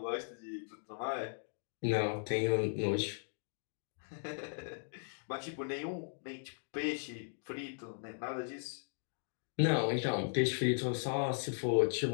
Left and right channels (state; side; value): silent; right; digital silence